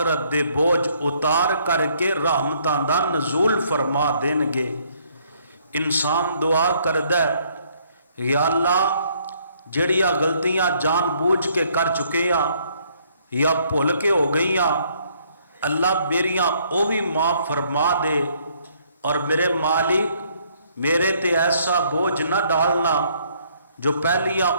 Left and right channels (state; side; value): inverted; both; correlation -0.66